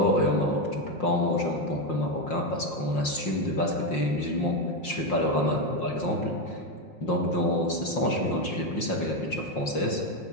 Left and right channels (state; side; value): late; right; 5.6 ms